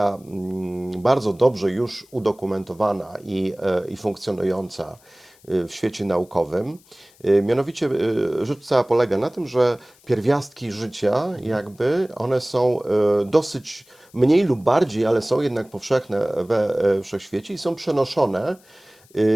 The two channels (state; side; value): noise; left; hiss, 29 dB below the sound